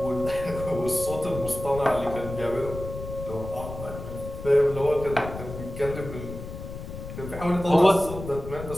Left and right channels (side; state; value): left; noise; rumble, 10 dB below the sound